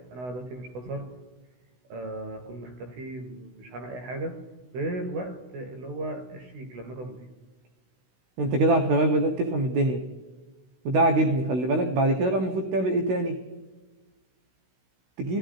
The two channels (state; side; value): late; left; 16 ms